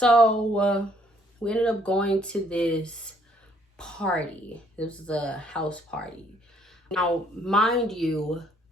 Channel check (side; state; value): both; normal; correlation 0.65